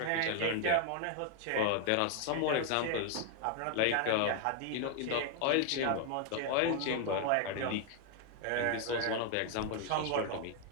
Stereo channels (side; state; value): both; different; correlation 0.00